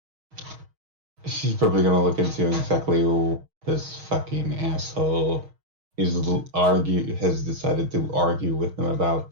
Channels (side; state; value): left; late; 6.3 ms